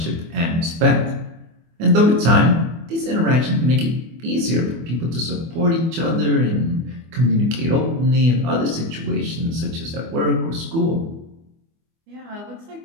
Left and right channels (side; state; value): left; late; 24 ms